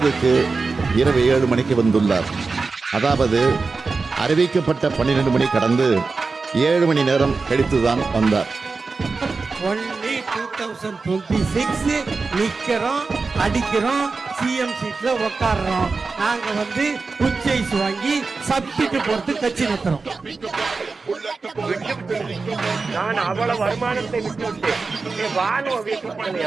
இரவு 7 மணிக்கு வந்துள்ளார். அதாவது அறிவிக்கப்பட்ட 12 மணி கடந்து 7 மணி நேரம் கழித்துதான் வந்தார். ஒன்லி 2026 நிக்கிறோம், அடிக்கிறோம், சிஎம் சீட்ல உட்காடுறோம். நாங்க உச்சைஸ் வாங்கி சப்டிட்டு போறது கட்சி நடத்துறோம். நான் அவ்வளவு வருமானத்தை விட்டு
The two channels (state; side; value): quieter; left; 4.2 dB